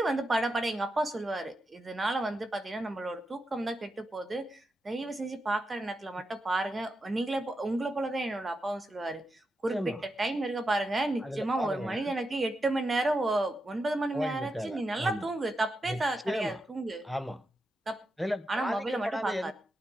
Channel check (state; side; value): normal; both; correlation 0.87